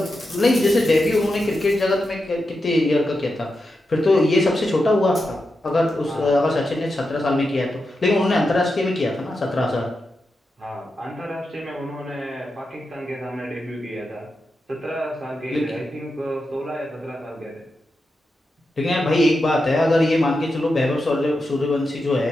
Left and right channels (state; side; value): normal; both; correlation 0.88